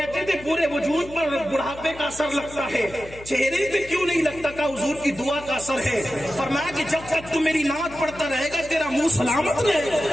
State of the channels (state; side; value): noise; left; hum, 17 dB below the sound